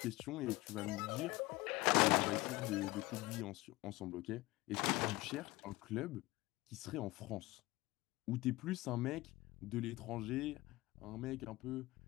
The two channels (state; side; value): quieter; right; 20.4 dB